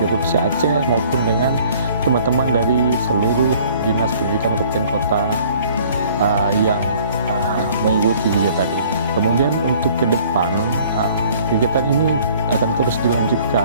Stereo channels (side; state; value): both; inverted; correlation -0.55